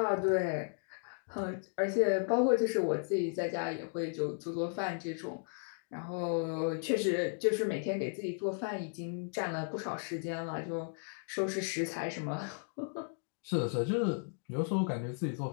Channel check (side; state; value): right; silent; 54 dB below the other